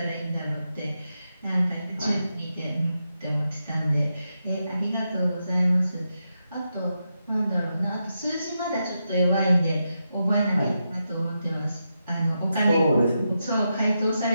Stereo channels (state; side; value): inverted; both; correlation -0.86